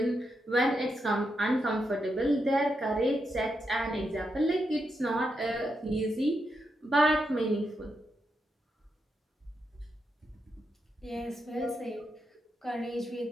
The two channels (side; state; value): both; normal; correlation 0.84